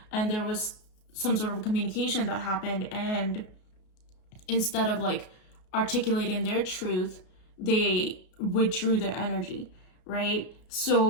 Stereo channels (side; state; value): right; late; 33 ms